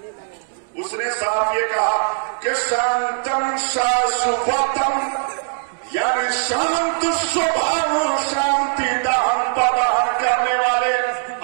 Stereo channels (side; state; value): left; silent; 66 dB below the other